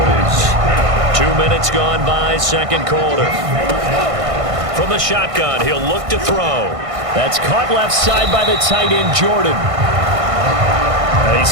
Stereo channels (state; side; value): late; left; 1.5 ms